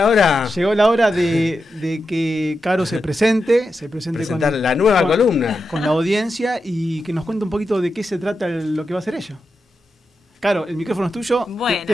hora. Llegó la hora de que Caro se presente Presentar la nueva columna. Con la audiencia y que nos cuente un poquito de qué se trata lo que va a hacer ella. Caro, el micrófono es tuyo. Bueno,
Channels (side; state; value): both; normal; correlation 0.88